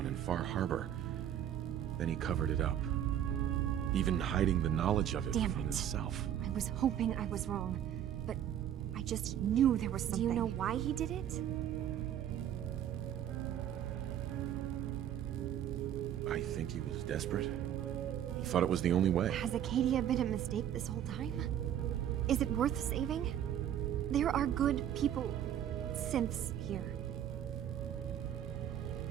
in Far Harbor. Then he covered it up. Even hiding the knowledge of it Damn from it. himself. I was hoping I was wrong, but I just knew there was something. Do you know why he did it? I think he was desperate. He thought it was the only way. Has Acadia been a mistake this whole time? Is it worth saving? There are good people, synths here.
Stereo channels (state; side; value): quieter; left; 10.3 dB